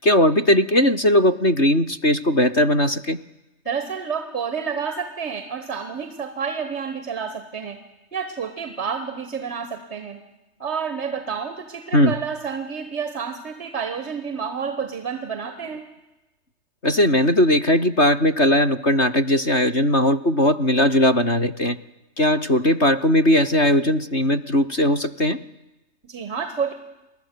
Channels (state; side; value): late; right; 3.2 ms